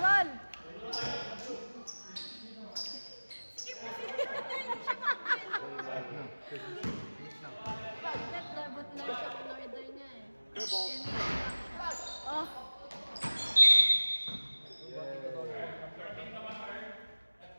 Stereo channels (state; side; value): inverted; both; correlation -1.00